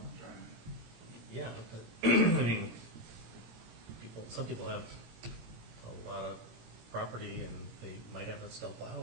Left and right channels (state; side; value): late; left; 17 ms